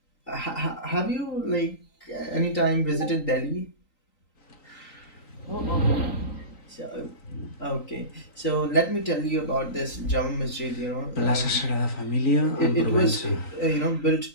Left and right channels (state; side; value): late; right; 3.9 ms